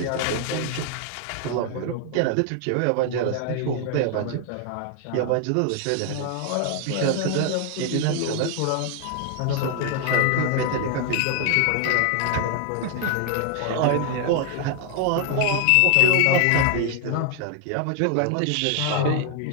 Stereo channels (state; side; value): different; both; correlation 0.00